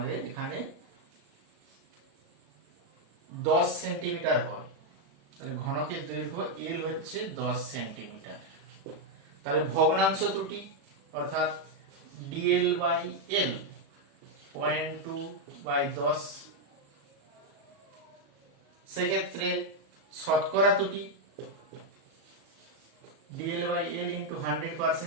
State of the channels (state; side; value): late; left; 36 ms